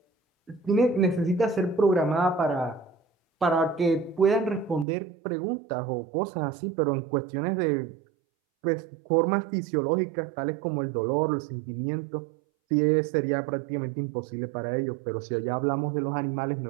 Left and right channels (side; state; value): left; drops out; at 4.9 s